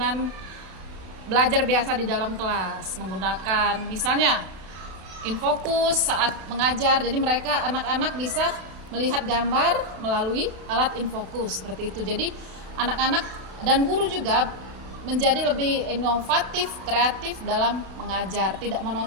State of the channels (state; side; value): late; left; 32 ms